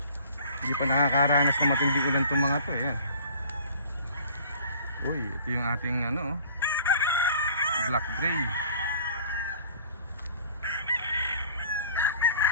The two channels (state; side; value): inverted; both; correlation -0.49